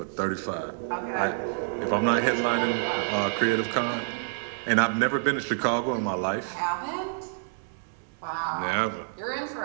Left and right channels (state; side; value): silent; left; 59 dB below the other